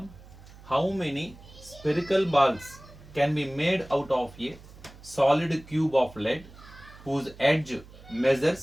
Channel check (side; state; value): right; noise; hum, 20 dB below the sound